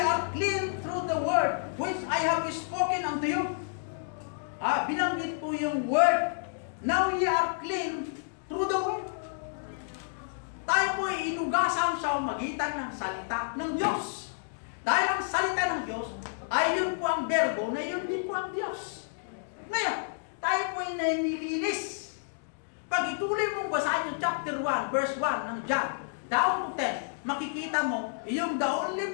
clean through the word which I have spoken unto you. Binanggit po yung word. Now ye are clean through the word. Tayo po ay inugasan sa magitan ng salita ng Diyos. Dahil ang salita ng Diyos ay yun po ang berbo na yun din po ang Diyos. Ngayon, tayo po ay nililinis. Pag ituloy mong basahin yung chapter 1, verse 1 ng John, down to 10, makikita mo yung the only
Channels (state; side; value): silent; right; digital silence